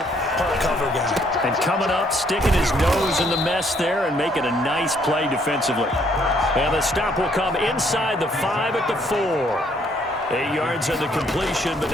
part cover guy. And coming up, sticking his nose in the mess there and making a nice play defensively. And the stop will come inside the 5 at the 4. 8 yards on the completion, but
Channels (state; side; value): normal; both; correlation 0.67